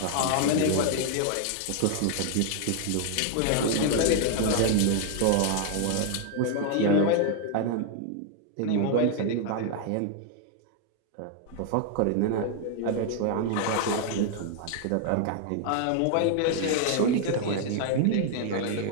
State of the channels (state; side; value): different; both; correlation 0.00